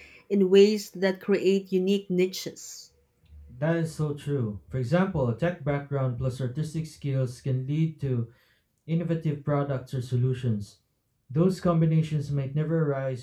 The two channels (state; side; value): identical; both; correlation 1.00